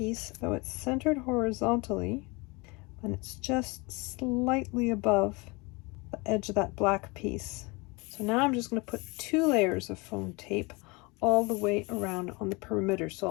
so it's centered horizontally, and it's just slightly above the edge of that black piece. So now I'm just going to put 2 layers of foam tape all the way around on the perimeter,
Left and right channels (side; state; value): right; quieter; 27.0 dB